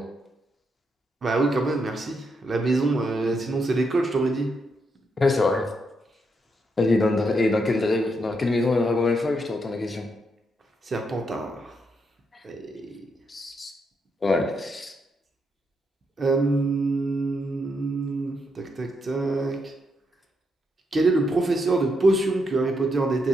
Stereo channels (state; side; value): normal; both; correlation 0.80